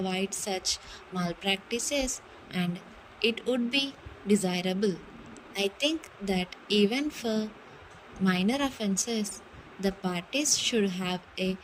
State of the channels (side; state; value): both; identical; correlation 1.00